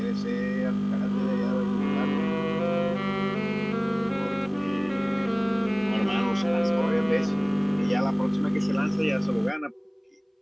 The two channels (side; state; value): both; identical; correlation 1.00